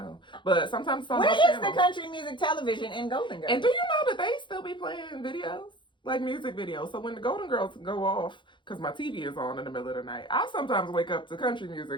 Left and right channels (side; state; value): right; late; 0.23 ms